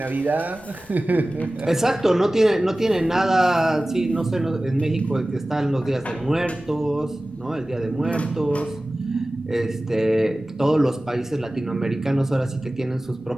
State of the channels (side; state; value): left; noise; rumble, 27 dB below the sound